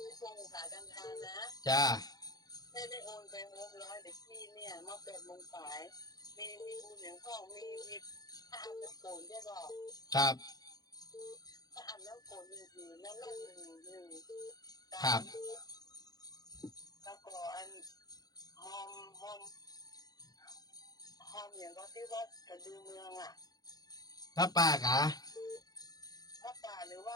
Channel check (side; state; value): right; late; 0.19 ms